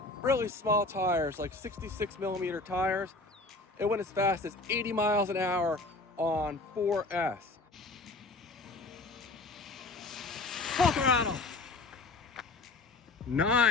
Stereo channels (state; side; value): quieter; right; 3.2 dB